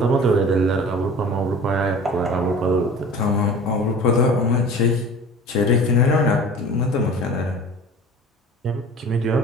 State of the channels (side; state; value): both; normal; correlation 0.41